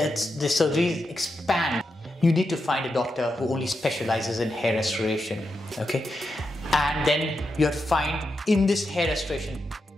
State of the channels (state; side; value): normal; both; correlation 0.86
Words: surgeries expand. You need to find a doctor who only specializes in hair restoration, okay? And then you have to find, in this hair restoration